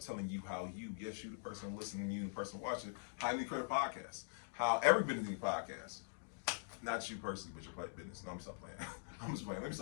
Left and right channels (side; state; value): right; silent; digital silence